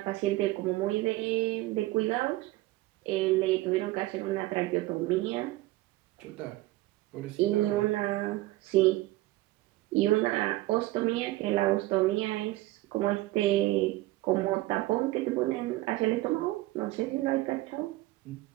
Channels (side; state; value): left; quieter; 18.2 dB